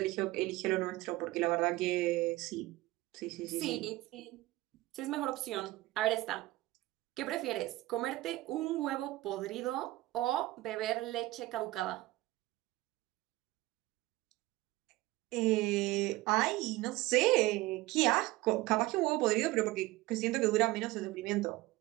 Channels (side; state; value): left; quieter; 18.8 dB